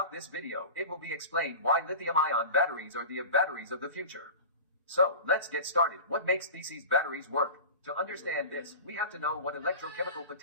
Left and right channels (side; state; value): both; inverted; correlation -0.34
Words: this video, it will be explained why lithium-ion batteries are the batteries of the future. So, let's get started. What makes these batteries work? To understand this, we have to know what electrochemical